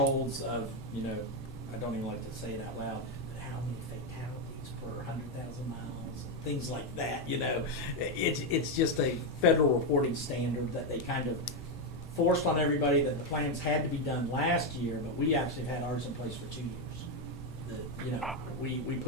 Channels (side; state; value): both; normal; correlation 0.05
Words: of, you know, I don't even like to say it out loud, but how many fatalities per 100,000 miles, and things like that, you know. It's just a federal reporting standard that they kind of forced on everybody, that the plans had to be done last year, but we actually had ours in place for 2 years. You know, we